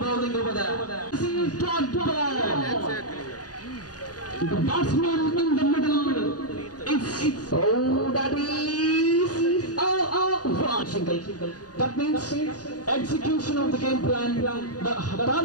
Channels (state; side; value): late; right; 0.68 ms